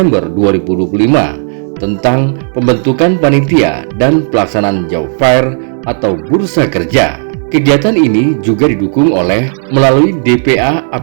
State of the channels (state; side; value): silent; left; 55 dB below the other